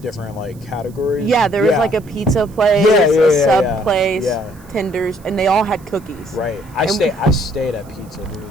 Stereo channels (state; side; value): noise; right; hiss, 27 dB below the sound